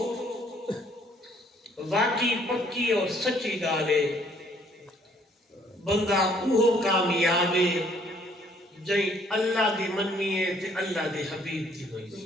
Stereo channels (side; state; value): both; normal; correlation 0.63